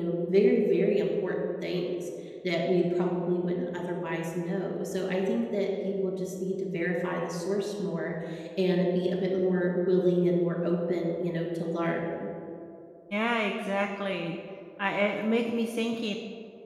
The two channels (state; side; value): identical; both; correlation 1.00